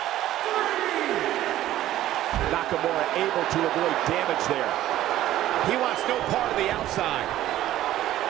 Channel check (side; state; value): left; quieter; 13.8 dB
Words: Nakamura able to avoid damage there. He wants no part of the outside.